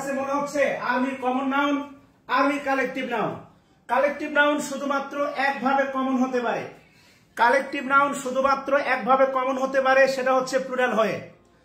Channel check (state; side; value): identical; both; correlation 1.00